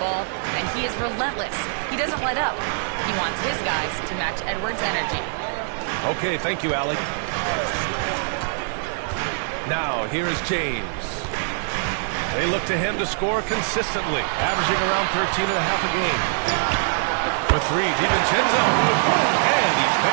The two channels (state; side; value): silent; left; digital silence